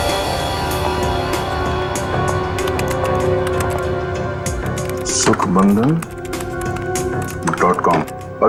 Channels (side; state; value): both; identical; correlation 1.00